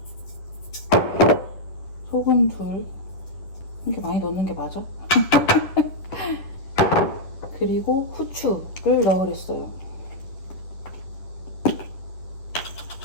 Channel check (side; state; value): right; late; 10 ms